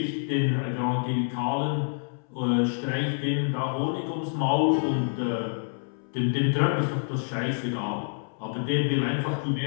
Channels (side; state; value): right; silent; 60 dB below the other